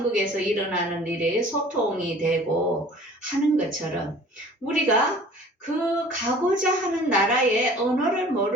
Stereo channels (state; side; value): normal; both; correlation 0.48